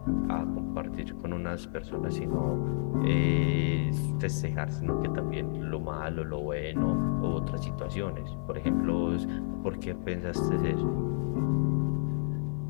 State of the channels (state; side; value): silent; right; 57 dB below the other